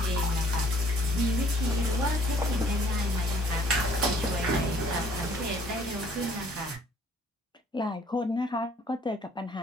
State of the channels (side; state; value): both; normal; correlation 0.60